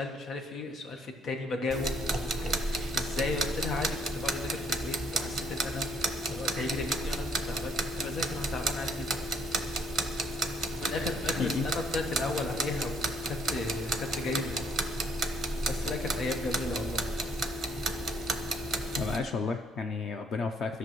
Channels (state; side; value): normal; both; correlation 0.67